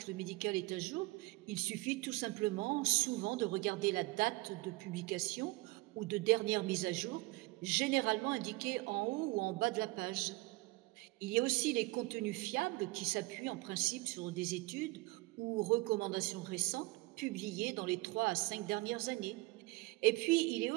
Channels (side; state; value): left; quieter; 22.2 dB